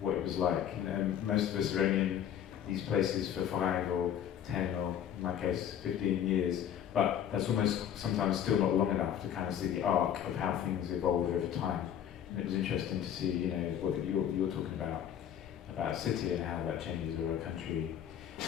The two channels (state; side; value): quieter; right; 9.7 dB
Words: it was like. And most of us are only in these places for 5 or 10 or, in my case, 15 years, but that's almost sometimes still not long enough to kind of see the arc of how things evolve over time. And it was interesting to see, you know, what you're talking about a city and how that changes over a country.